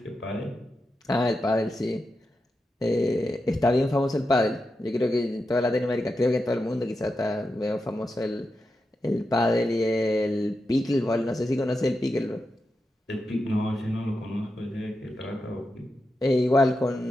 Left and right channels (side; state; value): both; normal; correlation 0.89